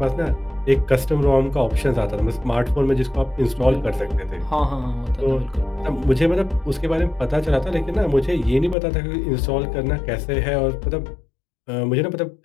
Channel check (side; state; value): right; drops out; at 8.8 s